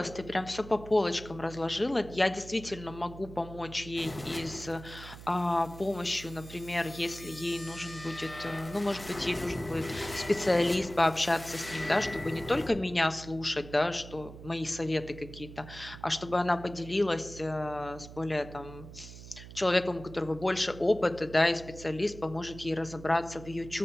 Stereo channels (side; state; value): right; noise; hum, 14 dB below the sound